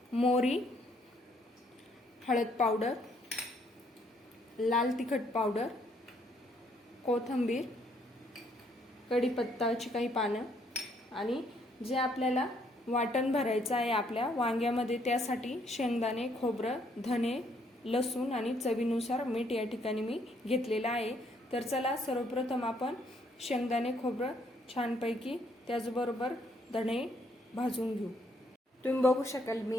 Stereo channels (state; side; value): normal; both; correlation 0.69